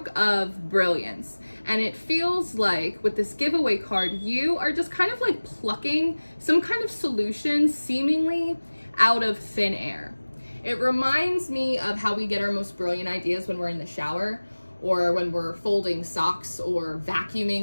of brilliance. And it feels like with this giveaway card, you are just kind of like plucking some kind of solution seemingly out of thin air. It reminds me of how we get our most brilliant ideas when we're in the shower or when we're folding socks or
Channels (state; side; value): inverted; both; correlation -1.00